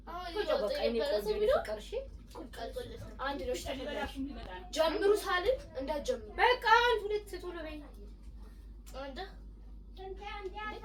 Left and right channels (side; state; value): both; identical; correlation 1.00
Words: ቁጭ በቃ እኔ ቆንጆ ፍቅር እሺ አንድ ነው ጀምሩ ሳልን እንዳትጀምሩ በቃ አንድ ሁለት ቶሎ በይ አንተ